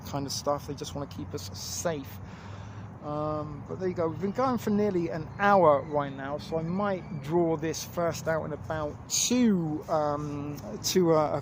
kind of stuff. They just want to keep us safe. But there you go. We've been going for nearly an hour right now, so I might draw this first out and about to a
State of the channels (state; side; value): identical; both; correlation 1.00